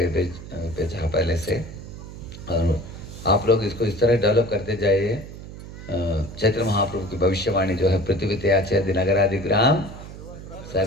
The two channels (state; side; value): noise; right; hum, 13 dB below the sound